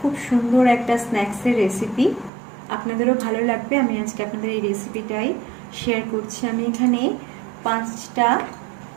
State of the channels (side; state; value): left; drops out; at 2.3 s